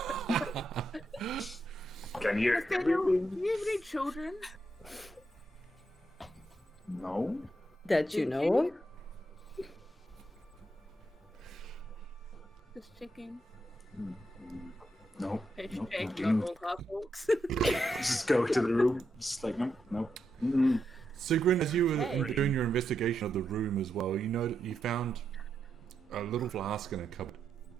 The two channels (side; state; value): both; normal; correlation 0.83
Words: Can you hear Nathaniel, do everything? you have any children? No. That you know of? Just checking. No. Hashtag No. not all half-orcs. Just go to the room. Just like, no. Mm-mm. Sigrun, as you were Hey. doing your investigation of the room as well, you know that you found a little flask in a cupboard.